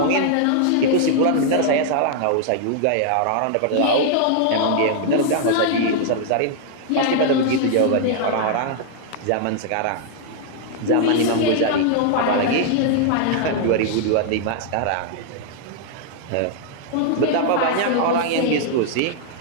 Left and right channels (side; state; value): both; different; correlation -0.01